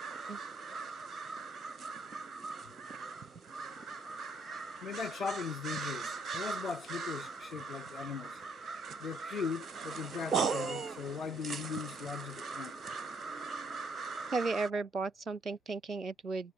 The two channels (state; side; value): normal; both; correlation 0.69